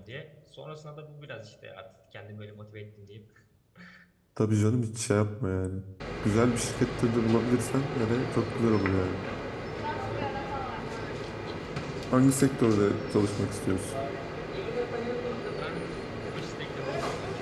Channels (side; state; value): both; identical; correlation 1.00